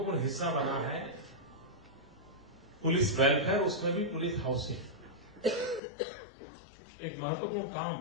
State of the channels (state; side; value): drops out; right; at 5.8 s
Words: हिस्सा बना है पुलिस वेलफेयर, उसमें भी पुलिस हाउसिंग एक महत्वपूर्ण